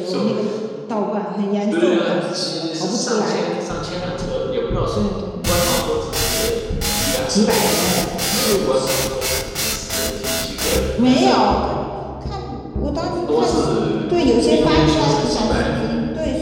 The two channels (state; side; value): identical; both; correlation 1.00